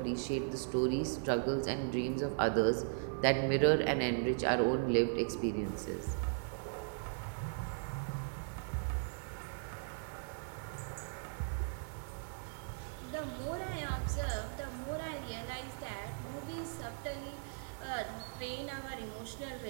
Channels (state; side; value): silent; left; 52 dB below the other